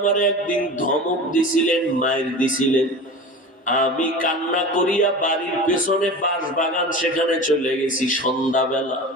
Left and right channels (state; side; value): normal; both; correlation 0.33